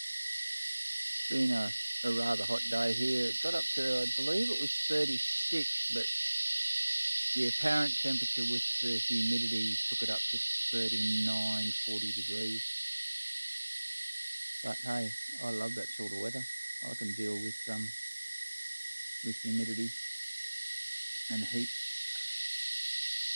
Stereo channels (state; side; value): inverted; both; correlation -1.00